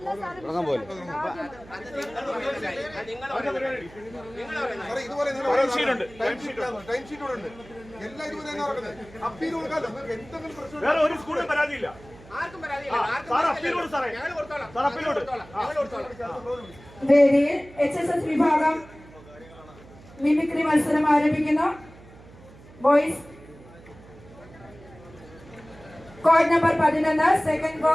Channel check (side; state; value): right; noise; hum, 21 dB below the sound